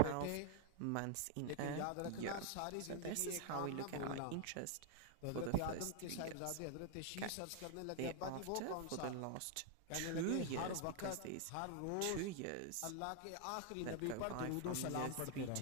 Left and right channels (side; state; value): both; different; correlation 0.00